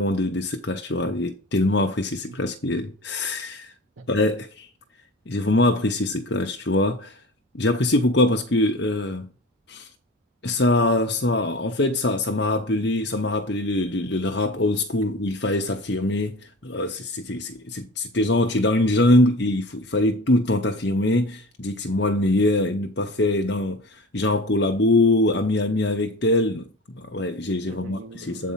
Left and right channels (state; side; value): normal; both; correlation 0.36